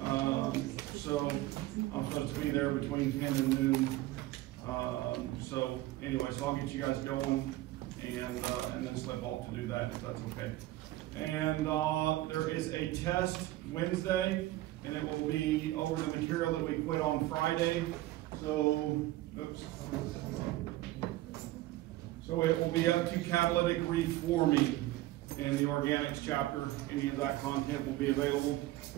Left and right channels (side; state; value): left; quieter; 16.6 dB